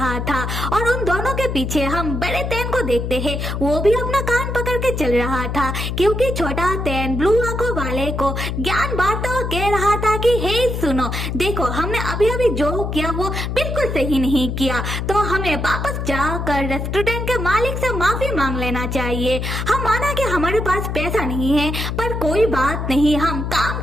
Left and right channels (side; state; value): left; noise; hum, 3 dB below the sound